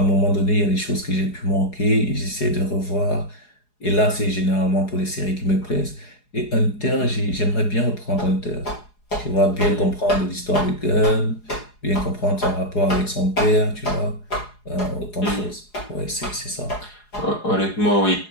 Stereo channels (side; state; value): right; late; 4.8 ms